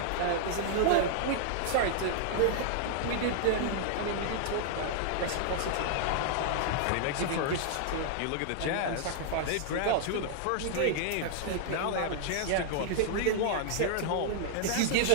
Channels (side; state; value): both; different; correlation 0.00